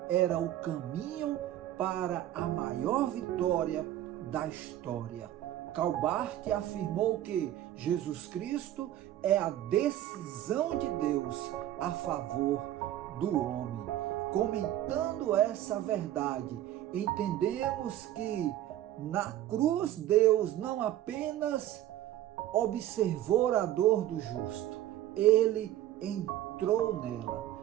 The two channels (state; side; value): quieter; left; 12.9 dB